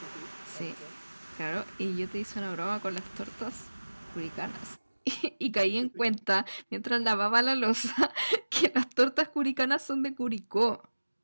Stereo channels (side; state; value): both; inverted; correlation -1.00